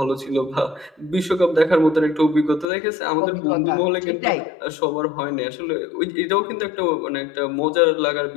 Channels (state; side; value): drops out; right; at 2.7 s